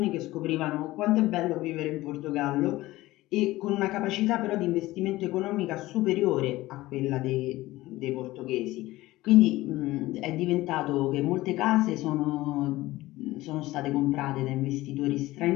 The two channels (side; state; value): right; quieter; 17.8 dB